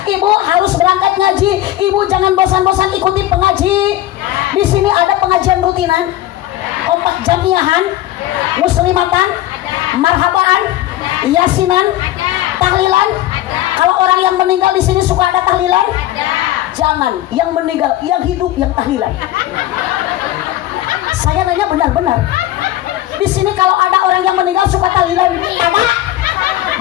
Ibu harus berangkat ngaji. Ibu jangan bosan-bosan ikuti pengaji. Di sini ada pengajian rutinan, kompak jamiahan, muslimatan, marhabaan, yasinan, tahlilan. Kalau orang yang meninggal di sini suka ada tahlilan? Jangan, yang meninggal, yang hidup yang tahlilan. Saya nanya benar-benar. Di sini kalau ada orang yang meninggal suka tahlilan? Ada.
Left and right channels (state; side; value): quieter; right; 14.6 dB